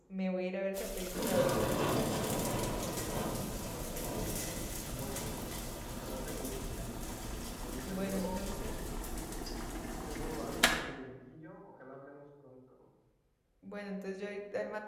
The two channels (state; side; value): identical; both; correlation 1.00